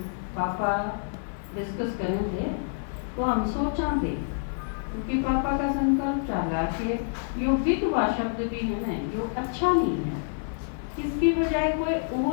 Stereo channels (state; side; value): silent; right; 60 dB below the other